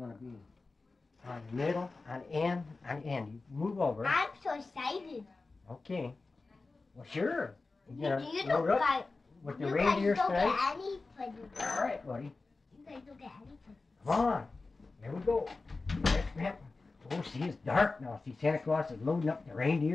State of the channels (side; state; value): right; quieter; 3.7 dB